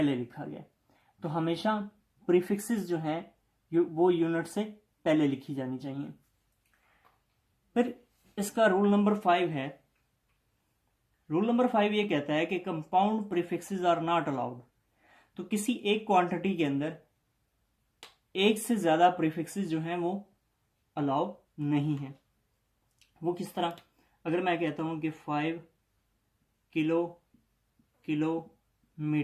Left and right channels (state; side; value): identical; both; correlation 1.00